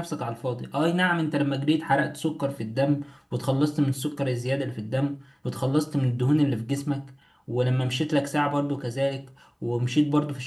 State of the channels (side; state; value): both; identical; correlation 1.00